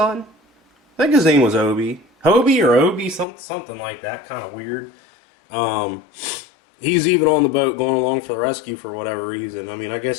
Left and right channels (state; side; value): drops out; right; at 3.2 s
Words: I think his name was Obi. Hobie or Obi, something like that, kind of weird. He's even on the boat going along for the rescue for whatever reason. I mean, I